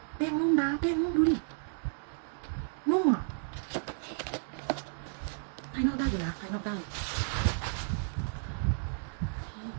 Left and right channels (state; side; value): silent; left; digital silence